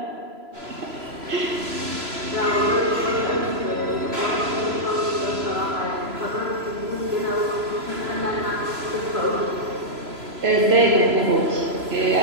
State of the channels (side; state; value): left; late; 3.0 ms